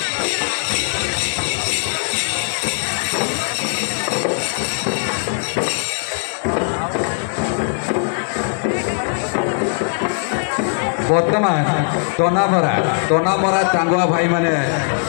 बर्तमान तनामरा चांगुआ भाई माने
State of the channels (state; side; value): silent; right; 60 dB below the other